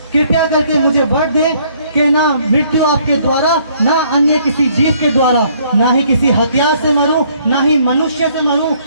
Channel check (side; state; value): both; inverted; correlation -0.64